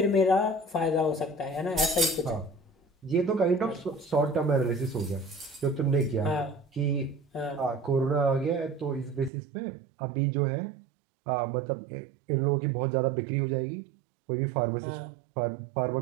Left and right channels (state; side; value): drops out; left; at 9.3 s